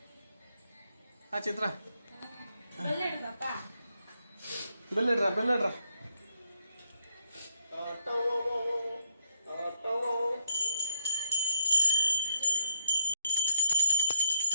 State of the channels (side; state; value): both; inverted; correlation -0.75